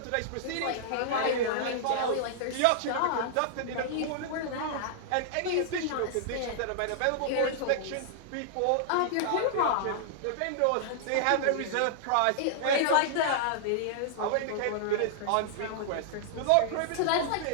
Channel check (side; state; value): both; different; correlation -0.01